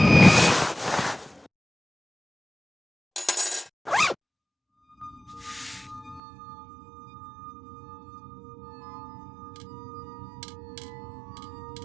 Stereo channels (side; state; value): left; drops out; at 6.2 s